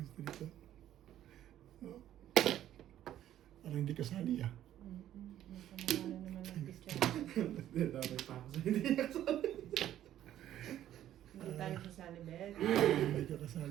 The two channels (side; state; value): left; quieter; 12.0 dB